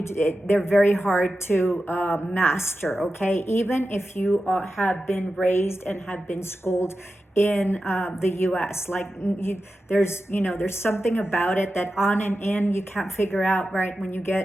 very hard to master. Okay, even if you have been raised and have been schooled in the U.S. There's something about it that on and in you can't figure out, right? When you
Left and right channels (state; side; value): normal; both; correlation 0.92